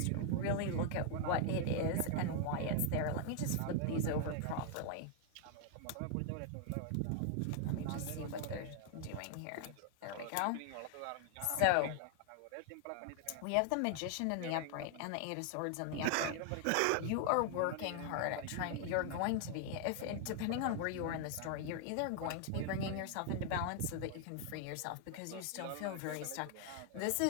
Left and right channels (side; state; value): both; different; correlation 0.00